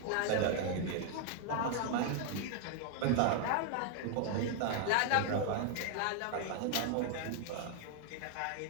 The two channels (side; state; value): both; different; correlation 0.00